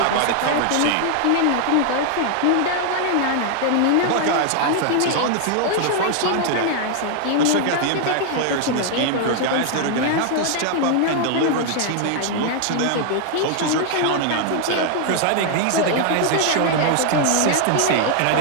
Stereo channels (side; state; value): both; different; correlation 0.00